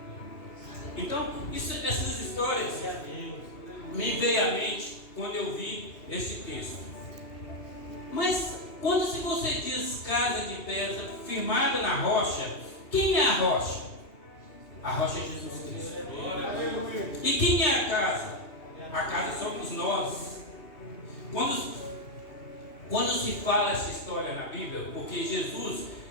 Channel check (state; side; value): late; right; 2.8 ms